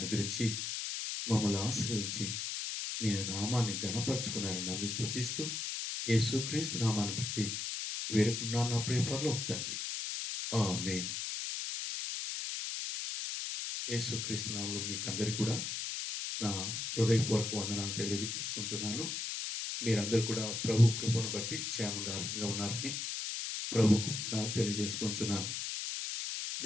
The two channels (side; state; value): left; noise; hiss, 3 dB below the sound